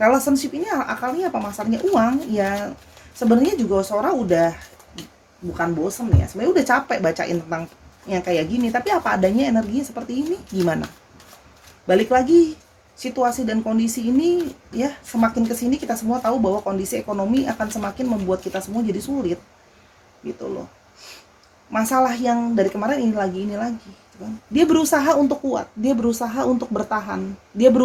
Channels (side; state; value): both; identical; correlation 1.00